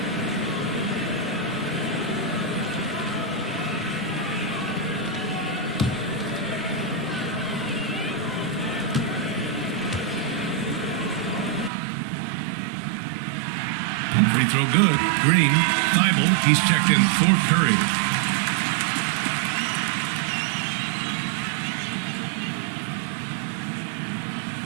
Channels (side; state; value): left; drops out; at 11.7 s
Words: Free throw good. Green. Thibault. He's checked in for Curry.